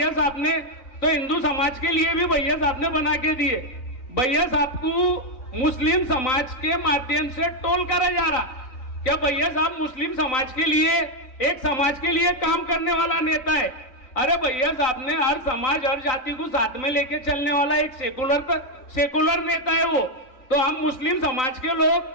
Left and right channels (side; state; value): right; late; 3.9 ms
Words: साहब ने, तो हिंदू समाज के लिए भी भैया साहब ने बना के दिए। भैया साहब को मुस्लिम समाज के माध्यम से टोल करा जा रहा। क्या भैया साहब मुस्लिम समाज के लिए, एक समाज के लिए काम करने वाला नेता है? अरे भैया साहब ने हर समाज, हर जाति को साथ में लेके चलने वाला एक सेकुलर नेता है वो। तो हम मुस्लिम समाज के लोग